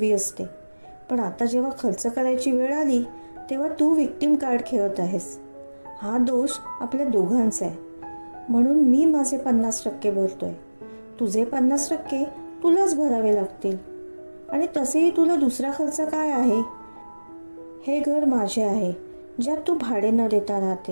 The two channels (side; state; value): both; inverted; correlation -1.00